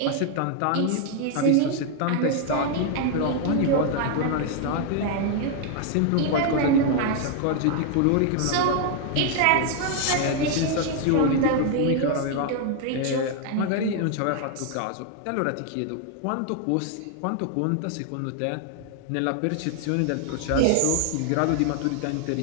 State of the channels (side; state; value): both; different; correlation 0.00